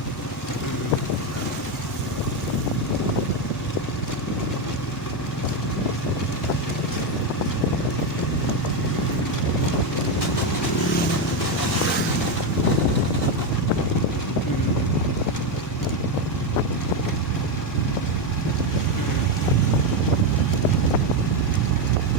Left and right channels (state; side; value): normal; both; correlation 0.09